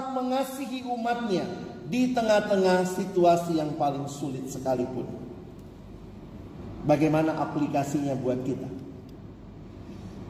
mengasihi umatnya di tengah-tengah situasi yang paling sulit sekalipun. Bagaimana aplikasinya buat kita?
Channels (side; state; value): both; identical; correlation 1.00